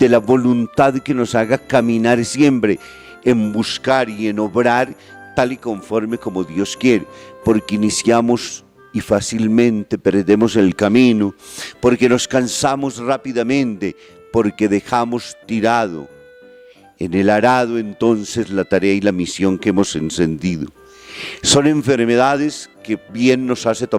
de la voluntad que nos haga caminar siempre en buscar y en obrar tal y conforme como Dios quiere, porque iniciamos y fácilmente perdemos el camino, porque nos cansamos rápidamente, porque dejamos tirado en el arado entonces la tarea y la misión que hemos encendido. Son enfermedades que bien nos hace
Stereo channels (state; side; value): identical; both; correlation 1.00